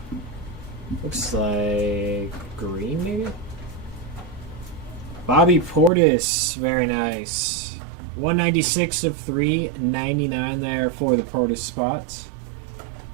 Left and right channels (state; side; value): drops out; left; at 5.9 s